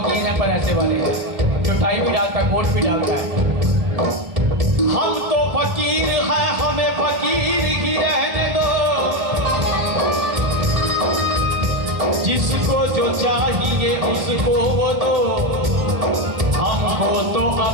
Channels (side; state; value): left; late; 1.7 ms